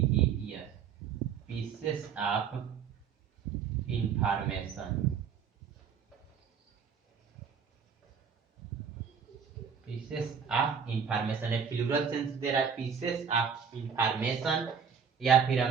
pieces of information, pieces of information है, प्लूरल सेंस दे रहा है, पीसेस ऑफ इंफॉर्मेशन। या फिर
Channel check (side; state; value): left; quieter; 6.9 dB